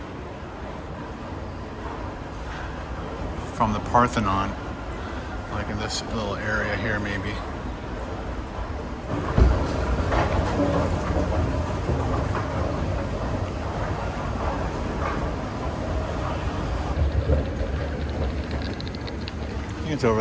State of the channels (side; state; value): both; identical; correlation 1.00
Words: From the Parthenon. Like in this little area here, maybe. I think it's over